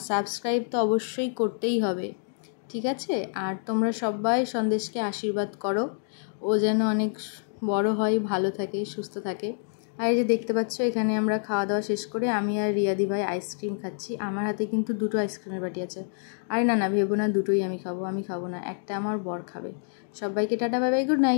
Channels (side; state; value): right; silent; digital silence